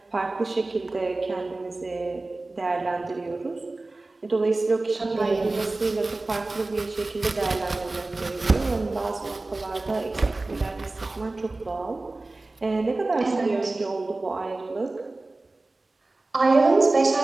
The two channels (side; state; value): left; quieter; 3.1 dB